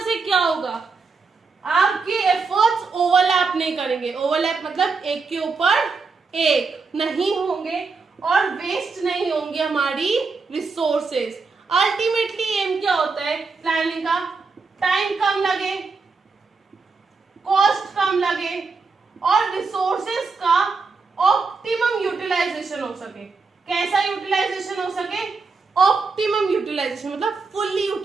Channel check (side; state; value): left; quieter; 4.5 dB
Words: से क्या होगा, आपके एफर्ट्स ओवरलैप नहीं करेंगे। ओवरलैप मतलब एक के ऊपर एक नहीं होंगे, और वेस्ट नहीं होंगी हमारी रिसोर्सेज। अल्टीमेटली एम क्या होता है प्लानिंग का? टाइम कम लगे, कॉस्ट कम लगे और रिसोर्सेज का ऑप्टिमम यूटिलाइजेशन हो सके। कैसा यूटिलाइजेशन हो सके? ऑप्टिमम यूटिलाइजेशन, मतलब फुल्ली